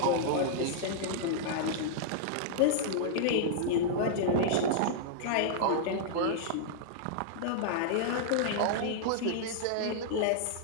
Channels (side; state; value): both; different; correlation -0.01